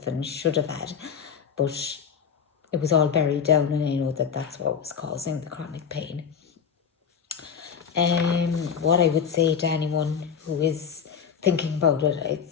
and should have had, but it was all buried down, and I know that that's what was causing the chronic pain. What I would say to anyone who is thinking about it, I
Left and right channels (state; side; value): quieter; right; 7.1 dB